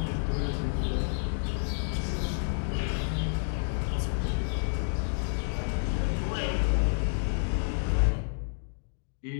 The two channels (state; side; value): silent; right; digital silence